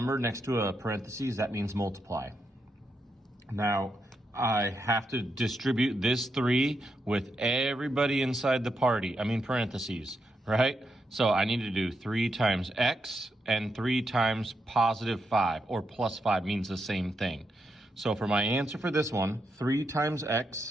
next to a parentheses, that means multiply. Now, I have to distribute this 3 with everybody inside the parentheses, right? So I need to do 3 times x and 3 times positive 5, or plus 5 means the same thing. So for my answer for this one, 3 times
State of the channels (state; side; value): normal; both; correlation 0.83